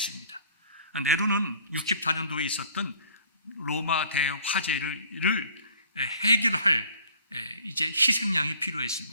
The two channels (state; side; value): inverted; both; correlation -0.54